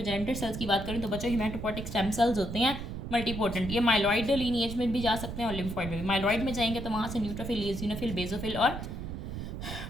सेल्स की बात करें तो बच्चों हिमेटोपोटिक स्टेम सेल्स होते हैं, मल्टीपोटेंट। ये माइलॉइड लीनिएज में भी जा सकते हैं और लिम्फॉइड में भी। माइलॉइड में जाएंगे तो वहाँ से न्यूट्रोफिल, इओसिनोफिल, बेसोफिल और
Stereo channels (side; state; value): right; noise; rumble, 7 dB below the sound